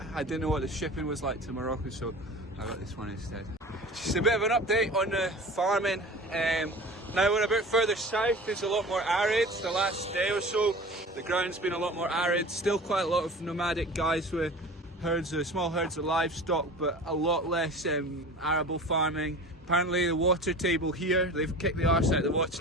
I didn't know what the shipping was like to Morocco, so I got this one instead. Just a bit of an update on the farming. Now we're a bit further south, it's a lot more arid. The last day or so, the ground's been a lot more arid. Still quite a lot of nomadic guys with herds of, small herds of livestock, but a lot less arable farming. Apparently the water table here, they've kicked the arse out of the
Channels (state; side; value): normal; both; correlation 0.38